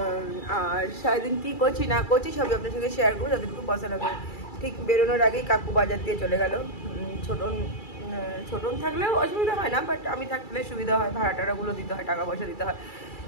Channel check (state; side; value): late; right; 2.3 ms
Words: আর সারাদিন কী করছি না করছি সবই আপনার সঙ্গে শেয়ার করবো, যতটুকু পছন্দ হবে। ঠিক বেরোনোর আগেই কাকু বাজার দিয়ে চলে গেল। ছোটন থাকলেও অসুবিধা হয় না, বাট আমি থাকলে সুবিধা হয়, ভাড়া টাড়াগুলো দিতে হয়, টাকা পয়সা দিতে হয়।